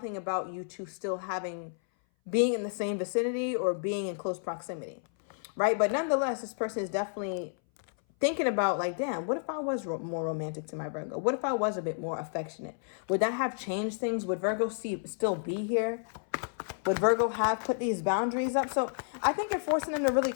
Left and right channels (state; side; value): silent; right; 57 dB below the other